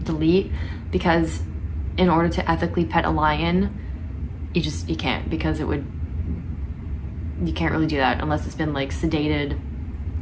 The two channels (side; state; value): both; identical; correlation 1.00